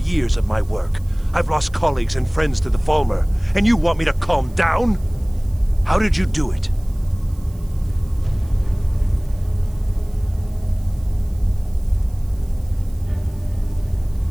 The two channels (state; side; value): noise; right; hiss, 27 dB below the sound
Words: of my work. I've lost colleagues and friends to the Falmer, and you want me to calm down? How did you do it?